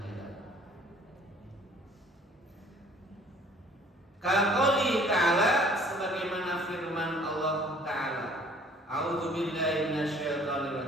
Kaqouli ta'ala, sebagaimana firman Allah Ta'ala, A'udzubillahi minasyaitonir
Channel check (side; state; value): both; normal; correlation 0.55